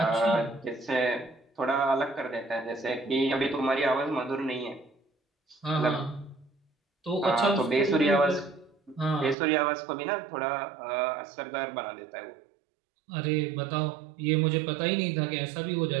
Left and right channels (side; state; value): left; drops out; at 9.3 s